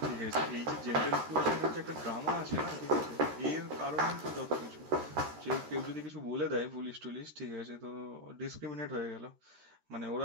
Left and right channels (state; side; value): late; left; 13 ms